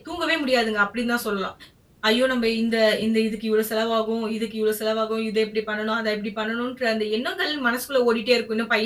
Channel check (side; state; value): both; identical; correlation 1.00